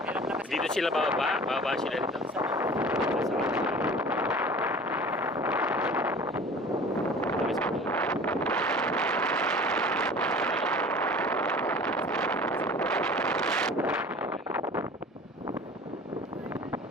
meron lakas. Dito sila bababa? Bababa sila dito.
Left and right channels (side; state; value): both; normal; correlation 0.42